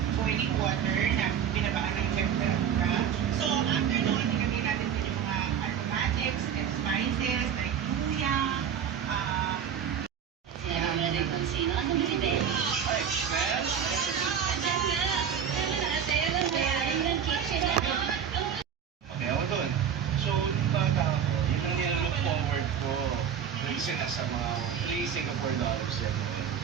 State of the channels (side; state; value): left; quieter; 8.1 dB